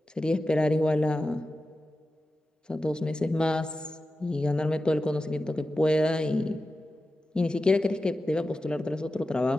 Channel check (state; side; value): normal; both; correlation 0.93